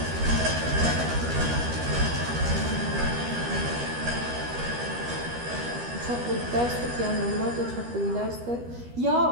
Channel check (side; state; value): left; late; 13 ms